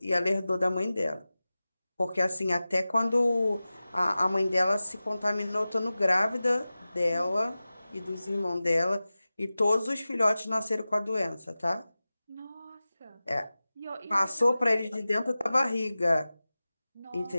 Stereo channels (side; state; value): both; inverted; correlation -0.96